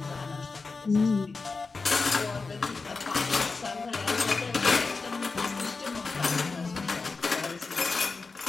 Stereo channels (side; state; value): right; quieter; 4.2 dB